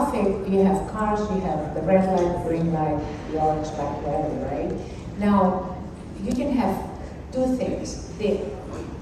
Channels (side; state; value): both; identical; correlation 1.00